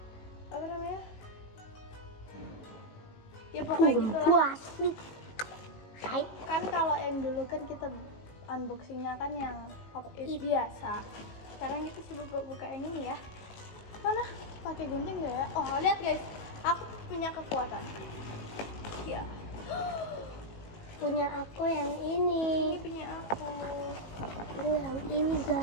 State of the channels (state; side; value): late; right; 19 ms